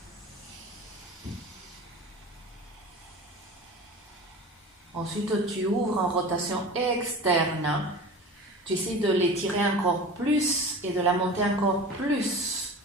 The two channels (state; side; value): normal; both; correlation 0.35